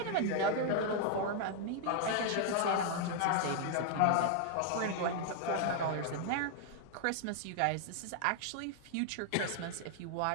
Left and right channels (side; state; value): both; different; correlation 0.00